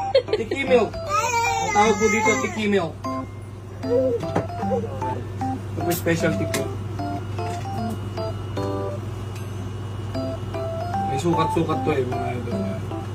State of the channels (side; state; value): both; identical; correlation 1.00